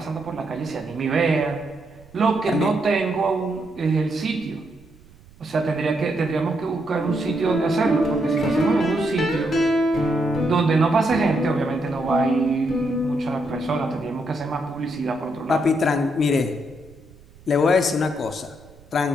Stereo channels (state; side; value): noise; right; rumble, 25 dB below the sound